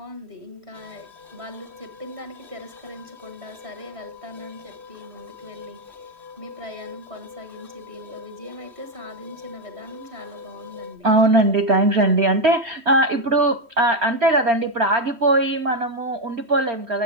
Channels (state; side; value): late; left; 3.1 ms